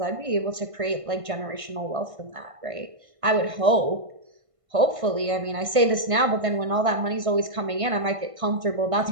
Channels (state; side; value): late; left; 1.5 ms